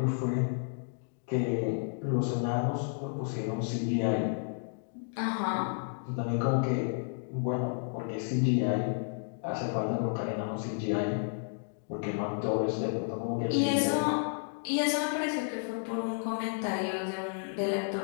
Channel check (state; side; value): silent; right; digital silence